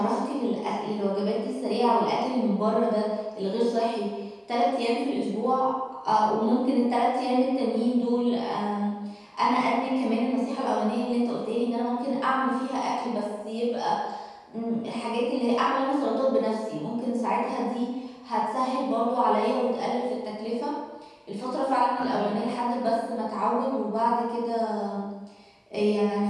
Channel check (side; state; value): both; identical; correlation 1.00